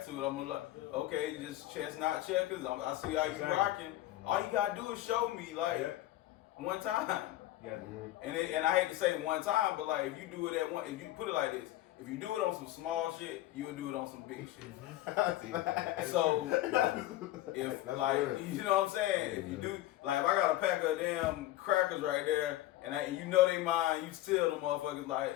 to it. I'm gonna like, okay, just chestnut checkers. I see how you rocking. All you gotta do is show me one time. Yeah. And I hate to say one time, but like if you do it at one, if you put it like this, if you do it on some small shit, you will do it on some big shit. So if like you know what I'm saying, if you do like if I got a pack of damn crackers right there and they mine, you steal the motherfuckers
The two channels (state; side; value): quieter; right; 15.3 dB